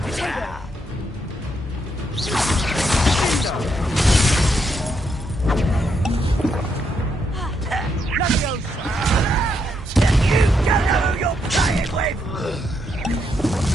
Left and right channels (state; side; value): normal; both; correlation 0.78